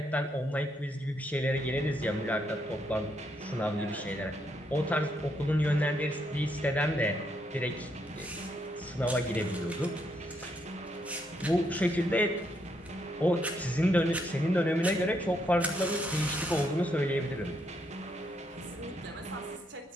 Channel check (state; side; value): normal; both; correlation 0.76